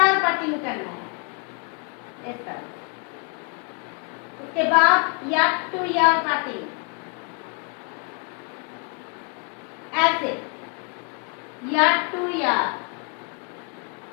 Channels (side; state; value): right; quieter; 37.4 dB